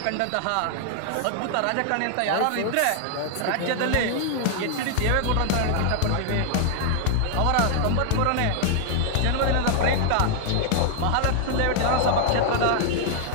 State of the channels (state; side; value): different; both; correlation 0.00